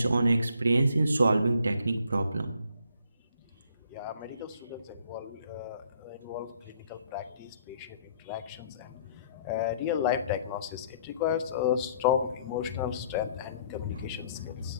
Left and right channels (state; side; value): inverted; both; correlation -0.63